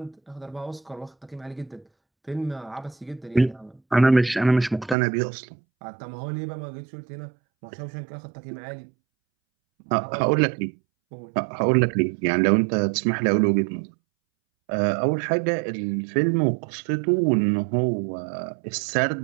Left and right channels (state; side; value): drops out; left; at 5.0 s